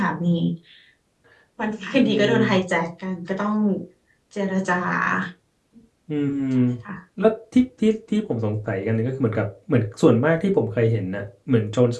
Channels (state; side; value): identical; both; correlation 1.00